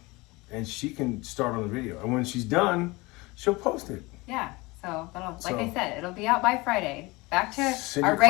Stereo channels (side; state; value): right; quieter; 23.4 dB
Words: and she can start on the video. And when she's done, she'll post it. Yeah. So like I said, it'll be out by Friday. Back to our your